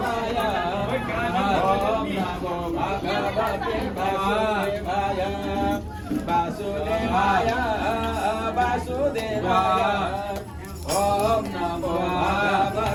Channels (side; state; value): both; identical; correlation 1.00